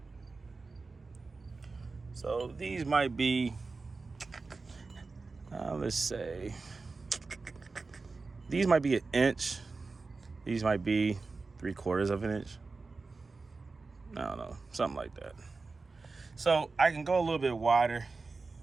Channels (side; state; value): left; quieter; 4.0 dB